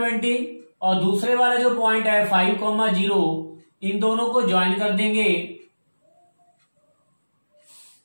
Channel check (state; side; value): inverted; both; correlation -1.00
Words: और दूसरे वाला जो पॉइंट है 5,0, इन दोनों को ज्वाइन कर देंगे।